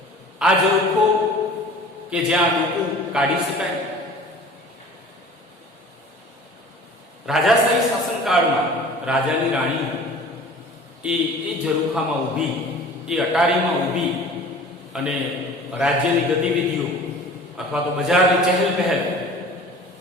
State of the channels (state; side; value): normal; both; correlation 0.44